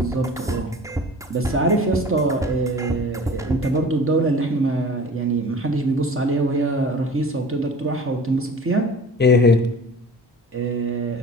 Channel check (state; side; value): normal; both; correlation 0.41